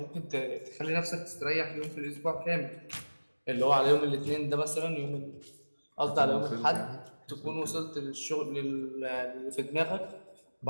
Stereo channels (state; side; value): inverted; both; correlation -1.00